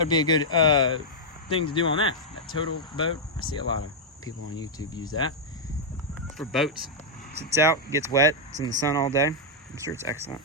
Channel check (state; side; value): normal; both; correlation -0.05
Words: be a good thing to do on that Total Boat. I see a lot of people on YouTube use that for boats. Sits out, gets wet, it's in the sun all day. I'm sure it's excellent.